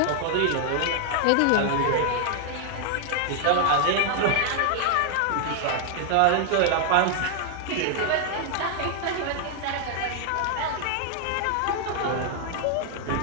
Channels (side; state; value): both; different; correlation 0.00